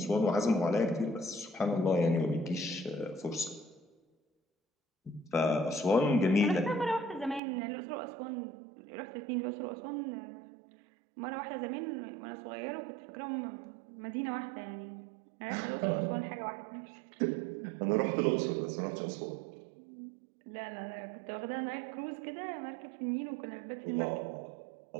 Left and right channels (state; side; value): drops out; left; at 7.4 s